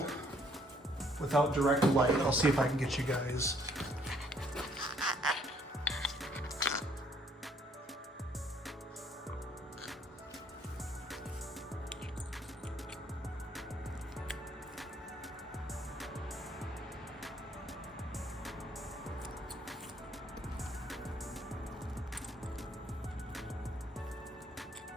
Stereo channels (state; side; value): normal; both; correlation 0.65